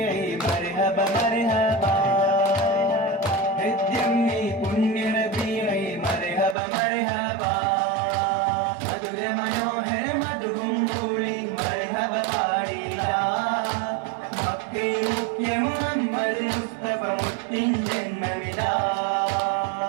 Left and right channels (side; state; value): left; drops out; at 6.6 s